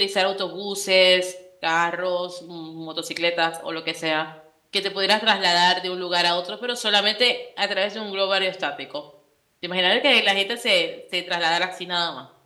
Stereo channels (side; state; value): both; identical; correlation 1.00